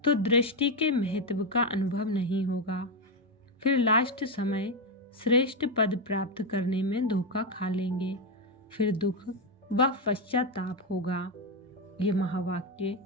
तो दृष्टि के महत्व का अनुभव नहीं होगा। फिर लास्ट समय श्रेष्ठ पद प्राप्त करने में धोखा खा लेंगे, फिर दुख व पश्चाताप होगा। ये महावाक्य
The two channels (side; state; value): both; normal; correlation 0.06